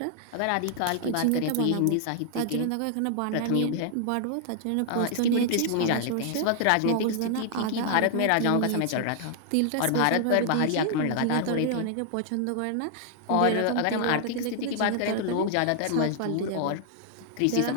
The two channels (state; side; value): different; both; correlation -0.01